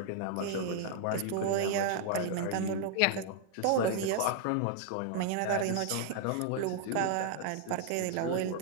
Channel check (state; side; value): different; both; correlation 0.00